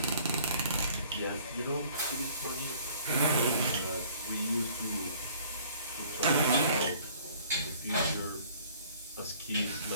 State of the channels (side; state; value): both; inverted; correlation -0.55